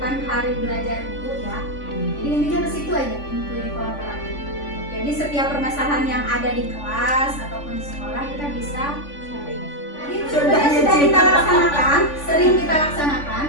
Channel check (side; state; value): right; late; 3.5 ms